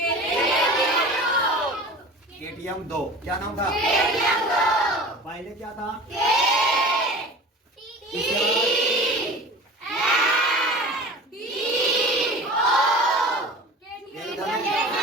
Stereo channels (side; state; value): both; normal; correlation 0.37